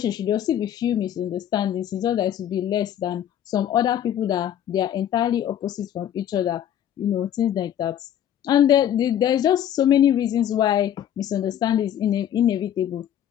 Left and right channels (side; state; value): right; quieter; 10.4 dB